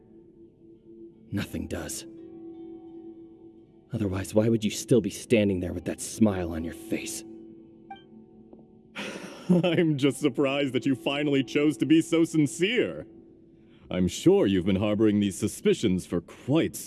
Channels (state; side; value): identical; both; correlation 1.00